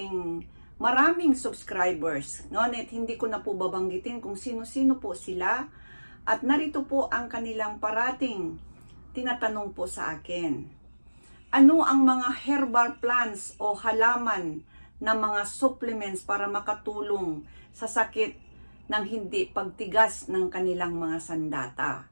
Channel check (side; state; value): both; inverted; correlation -1.00